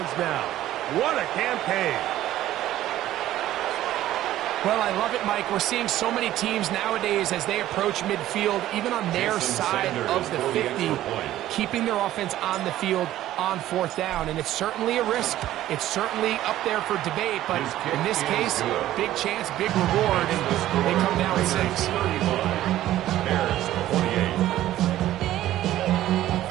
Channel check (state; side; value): quieter; left; 13.8 dB